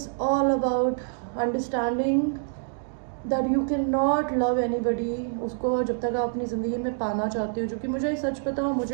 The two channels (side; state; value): left; silent; digital silence